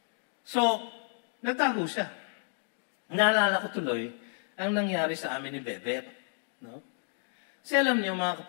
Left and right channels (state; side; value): silent; right; 57 dB below the other